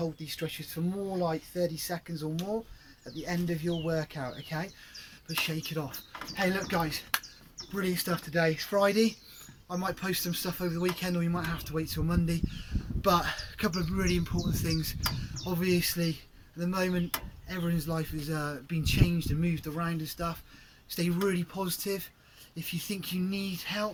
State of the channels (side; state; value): both; identical; correlation 1.00